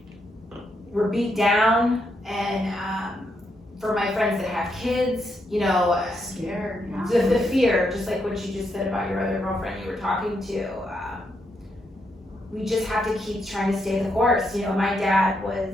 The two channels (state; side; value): normal; both; correlation 0.80